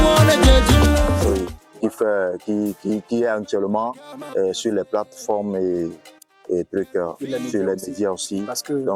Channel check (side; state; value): both; identical; correlation 1.00